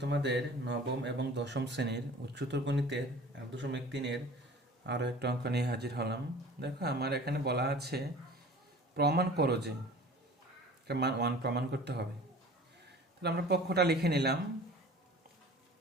তোমাদের নবম এবং দশম শ্রেণীর উচ্চতর গণিতের 8.3-এর আরও একটা অঙ্ক নিয়ে হাজির হলাম। দেখো, আমার এখানে বলা আছে প্রমাণ করো যে মান 1 প্রমাণ করতে হবে। তাহলে আমরা পক্ষটা লিখে নিলাম।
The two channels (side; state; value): both; normal; correlation 0.44